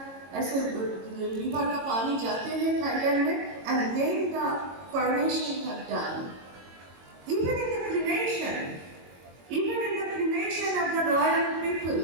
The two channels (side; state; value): left; late; 22 ms